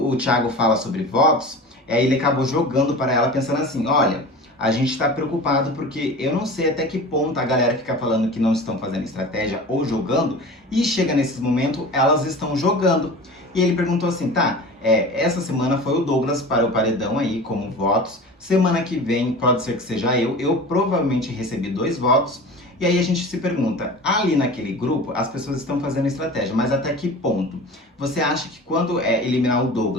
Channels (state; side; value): normal; both; correlation 0.35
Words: o Thiago fala sobre votos, ele acabou jogando para ela pensando assim, olha, a gente está preocupado porque eu não sei até que ponto a galera fica falando que não estão fazendo estratégia ou jogando, e chega nesses momentos, elas estão jogando. E ele perguntou assim, tá, essa semana foi o Douglas para o paredão aí, como votos, semana que vem pode ser que seja eu provavelmente recebi 2 votos, e aí a gente se pergunta, ali naquele grupo as pessoas estão fazendo estratégia, mas até que ponto? Você acha que quando eliminar o